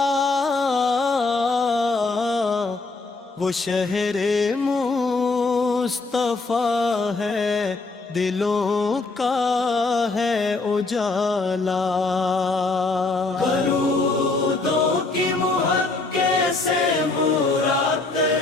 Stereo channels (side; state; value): right; quieter; 3.5 dB